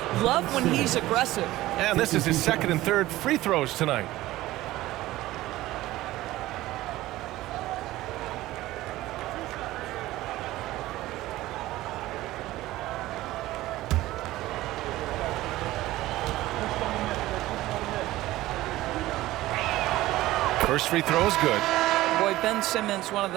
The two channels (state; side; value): quieter; left; 16.7 dB